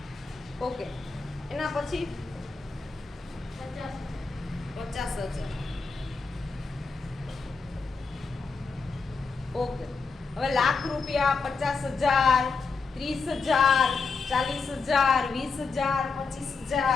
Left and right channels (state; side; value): quieter; right; 4.6 dB